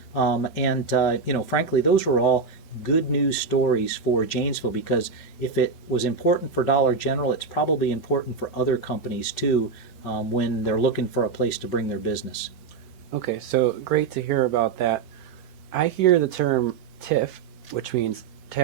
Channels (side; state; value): left; quieter; 5.1 dB